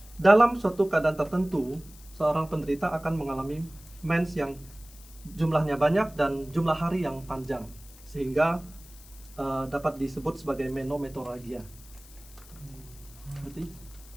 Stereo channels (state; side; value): noise; left; hiss, 22 dB below the sound